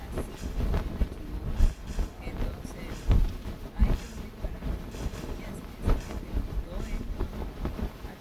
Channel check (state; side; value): identical; both; correlation 1.00